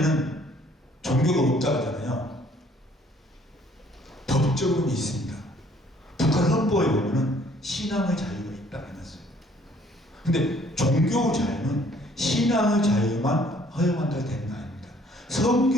종교가 없다고 하잖아요. 법적으로는 있습니다. 북한 헌법에 보면은 신앙의 자유가 있다고 해놨어요. 근데 종교 자유는 신앙의 자유만 허용한다고 되는 거 아닙니다.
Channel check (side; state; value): both; normal; correlation 0.60